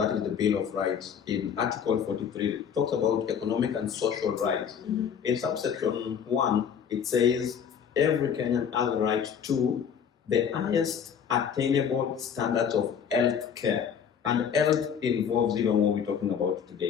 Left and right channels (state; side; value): quieter; right; 7.6 dB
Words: is the Bill of Rights, in Article 43, talks about economic and social rights. In subsection 1, it says every Kenyan has a right to the highest attainable standards of health care. And health involves even what we're talking about